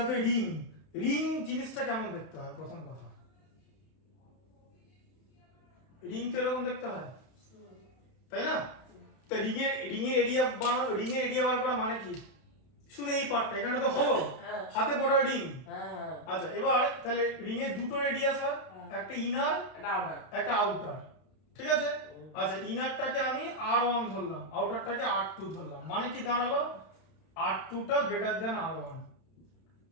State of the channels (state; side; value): late; right; 31 ms